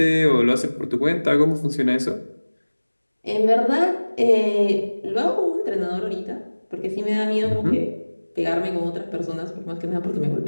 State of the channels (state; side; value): inverted; both; correlation -1.00